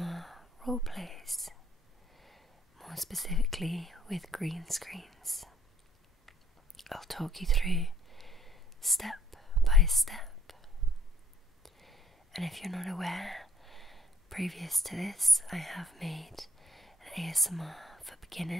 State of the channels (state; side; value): normal; both; correlation 0.62